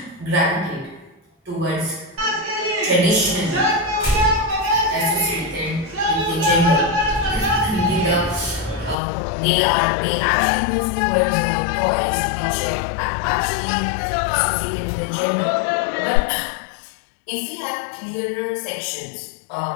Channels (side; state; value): right; drops out; at 9.0 s